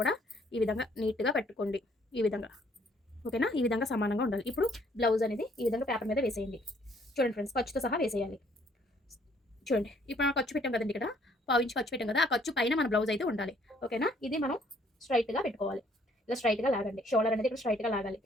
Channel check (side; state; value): both; normal; correlation 0.64